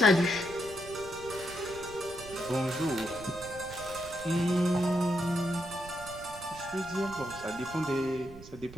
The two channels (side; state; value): right; noise; rumble, 17 dB below the sound